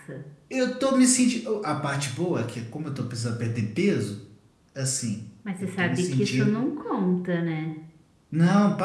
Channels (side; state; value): both; identical; correlation 1.00